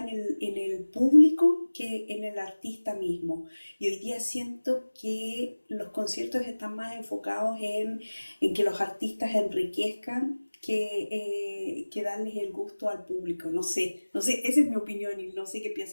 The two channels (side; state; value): both; inverted; correlation -1.00